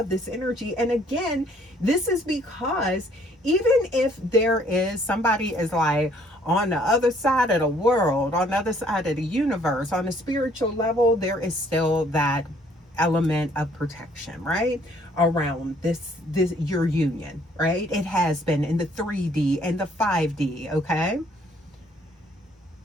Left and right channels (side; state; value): both; normal; correlation 0.62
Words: this energy. And again, this is because even if there is somebody is like on the other side of the world, on the other side of the universe, on a spiritual level, there is still that element of protection, right, around this your union, right? It has been in the 3D and the 5D. Okay,